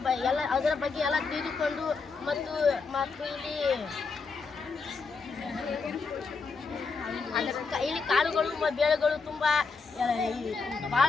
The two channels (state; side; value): quieter; right; 4.7 dB